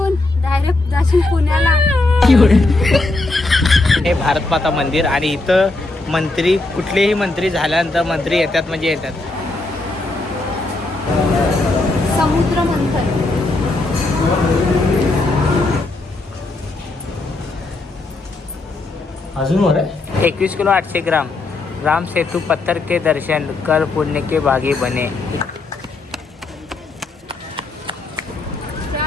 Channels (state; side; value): quieter; right; 3.1 dB